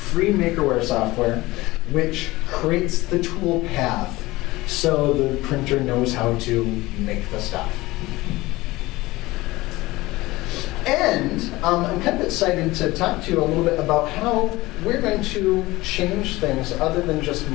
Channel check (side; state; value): right; quieter; 19.7 dB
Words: Makerware software, which creates the tool path so the printer knows how to make the stuff. And I'm kind of excited to talk to you a little bit about how we're going to change things other than just